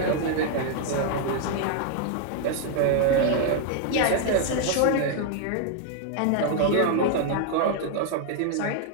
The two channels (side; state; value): both; different; correlation 0.00